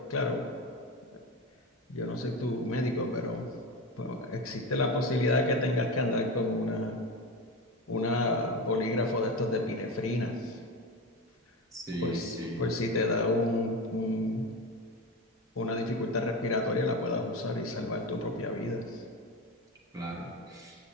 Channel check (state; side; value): normal; both; correlation 0.23